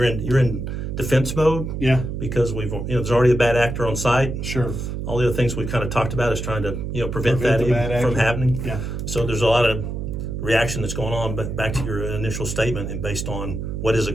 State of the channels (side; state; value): right; noise; hum, 4 dB below the sound